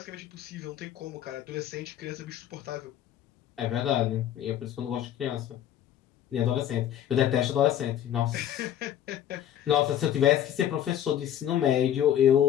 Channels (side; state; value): right; quieter; 10.7 dB